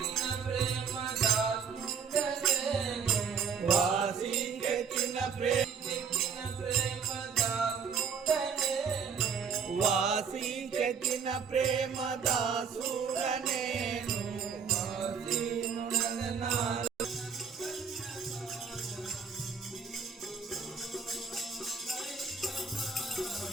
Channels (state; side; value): quieter; left; 6.3 dB